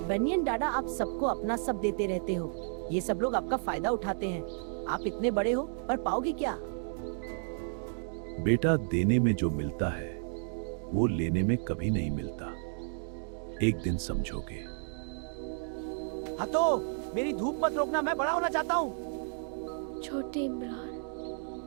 बनियन दादा, आप सबको अपना सब देते रहते हो। ये सब लोग आपका फायदा उठाते हैं। आप इतने बड़े हो पर पाओगे क्या? बेटा, देने में जो मिलता है वो लेने में कभी नहीं मिलता। एक दिन समझोगे। हाँ तो मेरी धूप मत रोकना, मैं बड़ा होना चाहता हूँ। छोटे इमरान,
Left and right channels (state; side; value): silent; left; digital silence